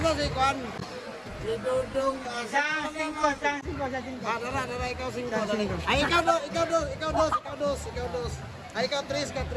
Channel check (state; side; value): identical; both; correlation 1.00